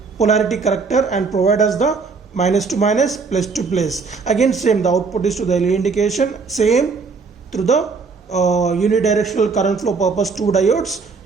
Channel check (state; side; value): quieter; left; 4.7 dB